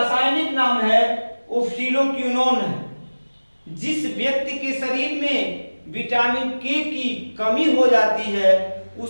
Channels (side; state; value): both; inverted; correlation -1.00